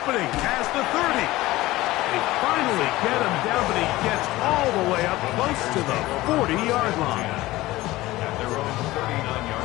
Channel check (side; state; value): right; quieter; 18.0 dB